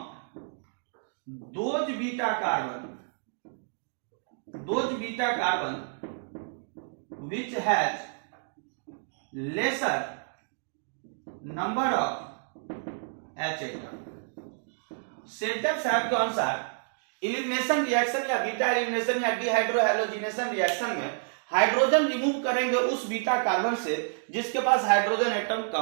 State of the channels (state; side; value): silent; left; digital silence